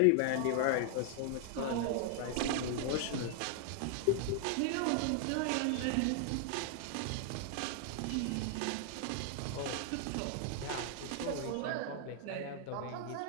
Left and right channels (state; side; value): different; both; correlation 0.00